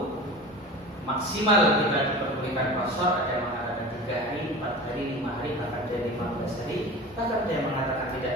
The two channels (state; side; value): normal; both; correlation 0.34